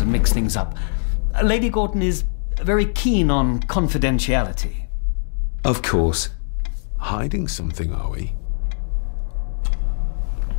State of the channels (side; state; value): right; silent; digital silence